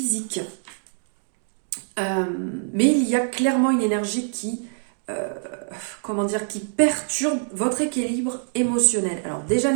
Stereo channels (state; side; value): silent; left; digital silence